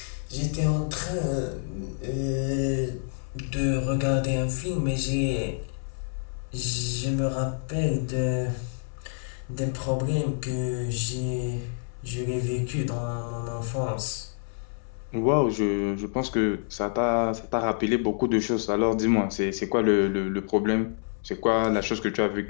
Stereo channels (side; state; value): right; silent; 60 dB below the other